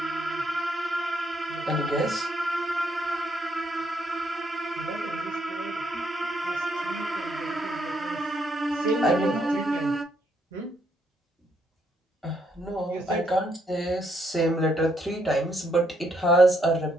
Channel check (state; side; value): normal; both; correlation 0.74